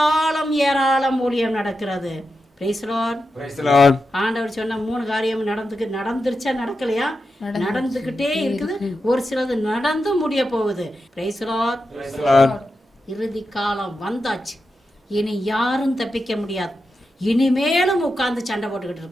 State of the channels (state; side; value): normal; both; correlation 0.89